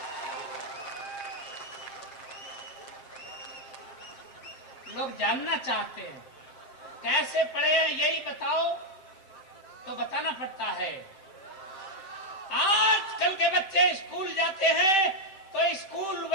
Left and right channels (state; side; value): late; right; 7.6 ms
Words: लोग जानना चाहते हैं कैसे पढ़े हैं, यही बताओ तो बताना पड़ता है। आजकल के बच्चे स्कूल जाते हैं तो स्कूल